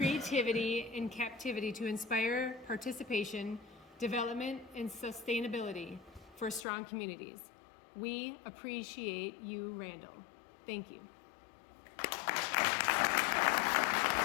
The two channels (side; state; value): right; drops out; at 6.7 s